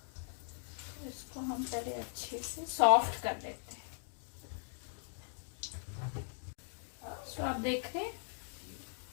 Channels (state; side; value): silent; right; digital silence